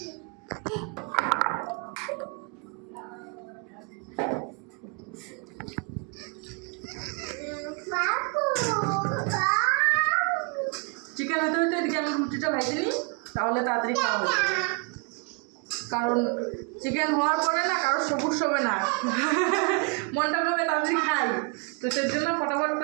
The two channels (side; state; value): left; quieter; 33.9 dB